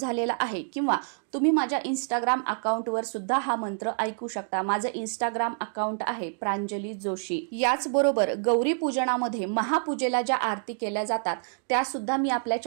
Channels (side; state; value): left; silent; 60 dB below the other